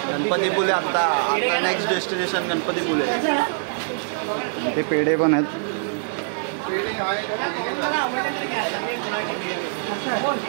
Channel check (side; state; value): left; silent; digital silence